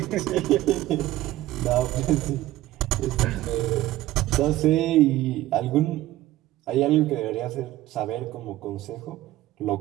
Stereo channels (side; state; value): left; quieter; 15.5 dB